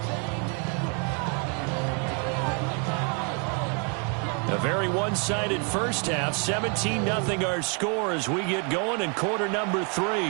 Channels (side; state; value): left; quieter; 37.1 dB